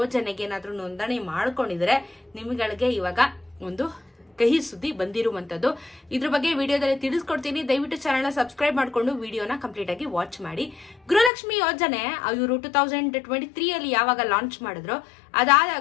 ಏನಾದ್ರೂ ನೋಂದಣಿ ಮಾಡ್ಕೊಂಡಿದ್ರೆ ನಿಮ್ಗಳಿಗೆ ಇವಾಗ ಒಂದು ಕಹಿ ಸುದ್ದಿ ಬಂದಿರುವಂತದ್ದು. ಇದ್ರ ಬಗ್ಗೆ ವಿಡಿಯೋದಲ್ಲಿ ತಿಳಿಸ್ಕೊಡ್ತೀನಿ. ದಯವಿಟ್ಟು ಚಾನೆಲ್ ಸಬ್ಸ್ಕ್ರೈಬ್ ಮಾಡ್ಕೊಂಡು ವಿಡಿಯೋನ ಕಂಪ್ಲೀಟ್ ಆಗಿ ವಾಚ್ ಮಾಡಿ. ಗೃಹಲಕ್ಷ್ಮಿ ಯೋಜನೆ ಇವರು 2023 ಅಲ್ಲಿ ಯಾವಾಗ ಲಾಂಚ್ ಮಾಡಿದ್ರು,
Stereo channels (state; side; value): drops out; right; at 11.3 s